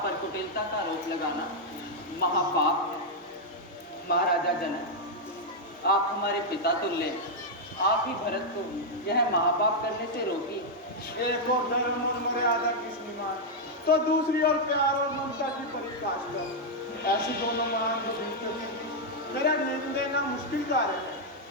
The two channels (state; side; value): normal; both; correlation -0.03